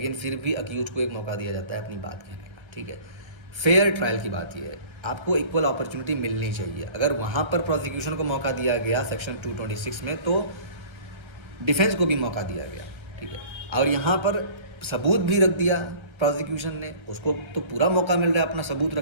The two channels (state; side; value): late; left; 1.3 ms